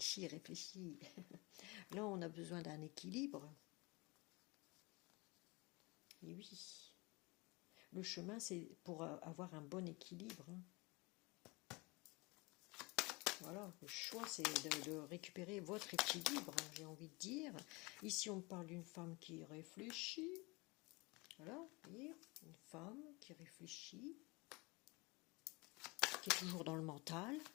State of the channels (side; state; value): right; quieter; 25.8 dB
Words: il réfléchit. Là, on a besoin d'un équilibre. Et oui. Le chemin, c'est pour avoir un bon équilibre. Voilà, le choix, c'est de récupérer votre équilibre, j'ai envie de dire. Ici, on parle d'une femme qui réfléchit. Voilà, vous voyez, une femme qui réfléchit, qui est toujours dans le mental.